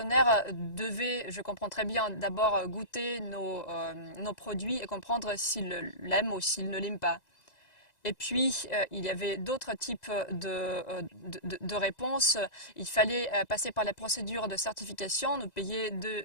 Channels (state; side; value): late; right; 2.0 ms